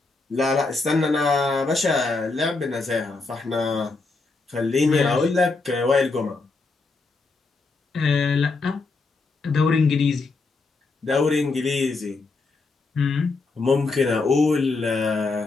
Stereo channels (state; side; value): quieter; right; 3.8 dB